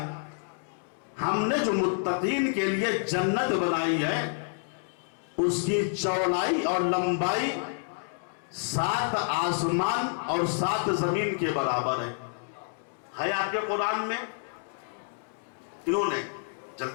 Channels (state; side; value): silent; right; 59 dB below the other